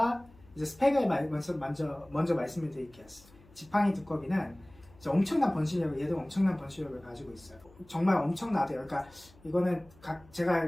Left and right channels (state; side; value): noise; left; hum, 26 dB below the sound